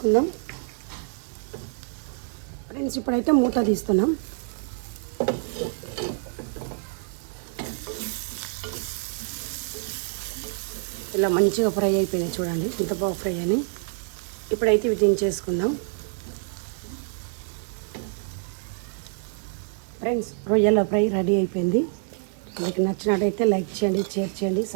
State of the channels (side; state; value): left; silent; 60 dB below the other